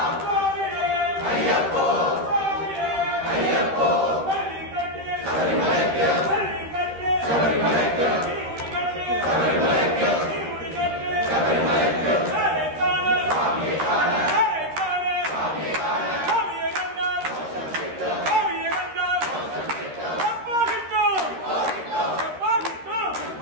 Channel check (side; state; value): left; late; 13 ms